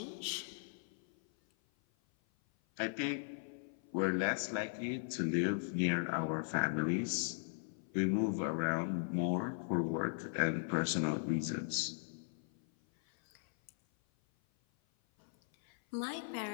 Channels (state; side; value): silent; right; 52 dB below the other